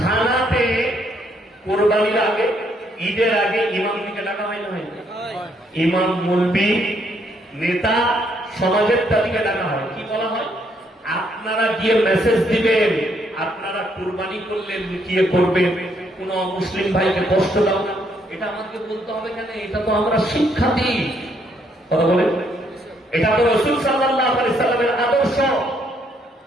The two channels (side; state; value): both; normal; correlation 0.71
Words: কোরবানির আগে, ঈদের আগে ইমাম দিকে ডাকা হয় না? হয় ইমাম, মুলবি, নেতা, সমাজের তাদেরকে ডাকা হয়। কি বলা হয়? আপনারা গিয়ে মেসেজ দিবেন, আপনারা কোরবানি করলে লুকিয়ে করবেন, কোন মুসলিম ভাইকে কষ্ট দাও না। এটা আমাকে বলতে হবে কেন? এটা তো আমরা শিক্ষা দিই। কথা বলে, এটা তো রাসূল সাল্লাল্লাহু আলাইহি সাল্লামের আদর্শ,